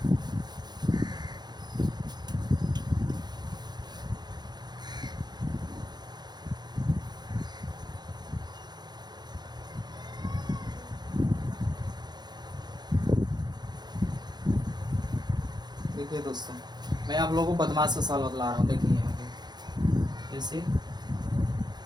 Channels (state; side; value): late; left; 0.20 ms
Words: देखिए दोस्तों, मैं आप लोगों को बदमाश का सवाल बतला रहा हूँ। देखिए यहाँ पे जैसे